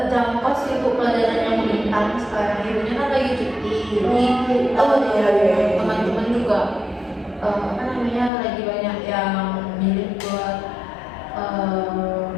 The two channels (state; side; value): drops out; right; at 8.3 s